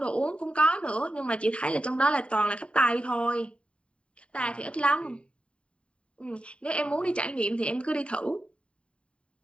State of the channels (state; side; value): late; right; 0.059 ms